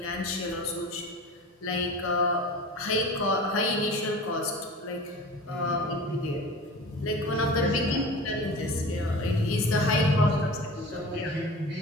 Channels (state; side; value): normal; both; correlation 0.36